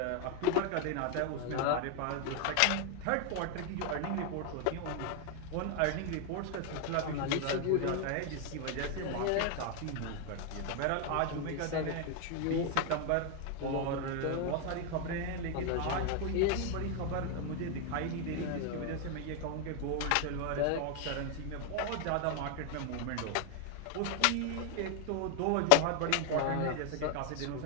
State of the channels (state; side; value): different; both; correlation 0.00